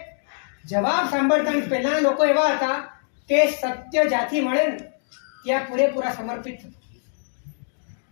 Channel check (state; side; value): silent; right; digital silence